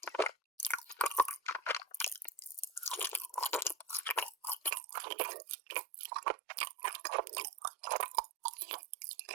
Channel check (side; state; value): left; drops out; at 4.7 s